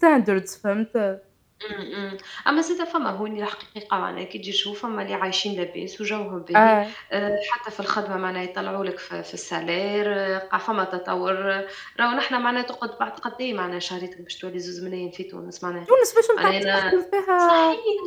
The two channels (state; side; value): identical; both; correlation 1.00